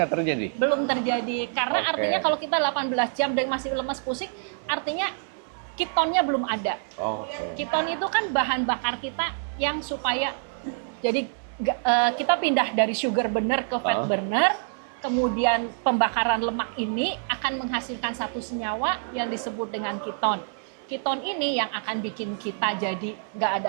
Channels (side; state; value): left; silent; digital silence